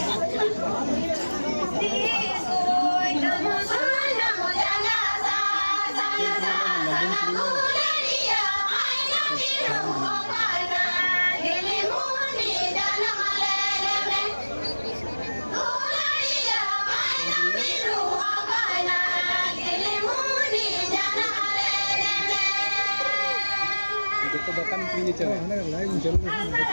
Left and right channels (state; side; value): inverted; both; correlation -1.00